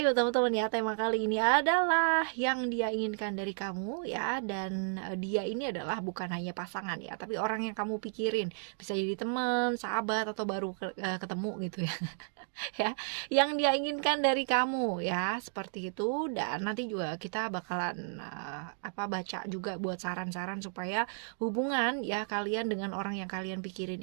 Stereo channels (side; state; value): left; silent; digital silence